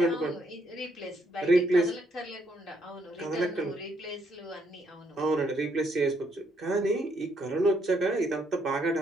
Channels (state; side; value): normal; both; correlation 0.73